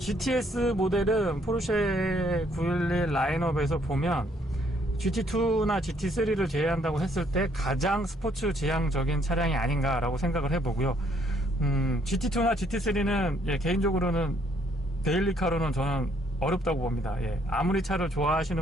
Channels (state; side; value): normal; both; correlation 0.67